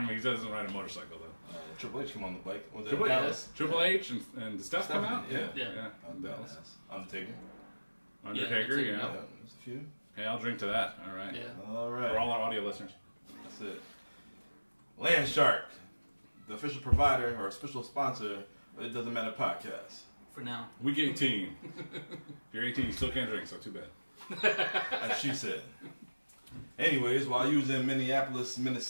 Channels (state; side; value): inverted; both; correlation -1.00